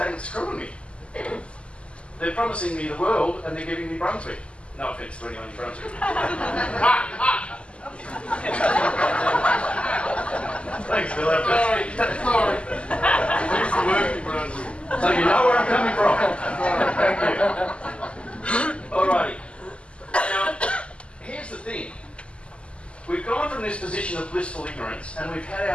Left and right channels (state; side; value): late; right; 0.055 ms